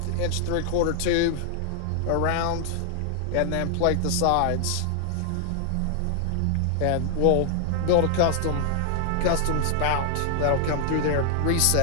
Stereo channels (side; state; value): both; different; correlation 0.00